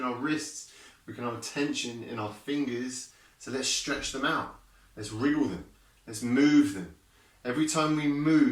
our wrists. We can hold tension in our fingers. So let's stretch them out. Let's wriggle them. Let's move them. Every time we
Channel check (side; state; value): both; identical; correlation 1.00